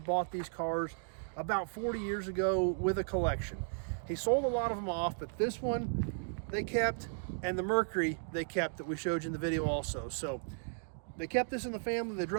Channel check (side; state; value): left; silent; digital silence